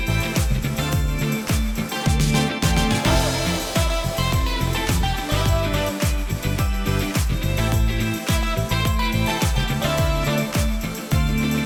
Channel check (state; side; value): identical; both; correlation 1.00